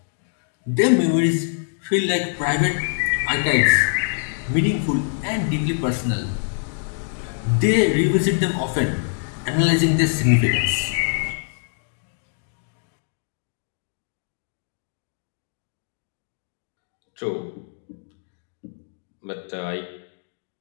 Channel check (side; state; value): right; silent; digital silence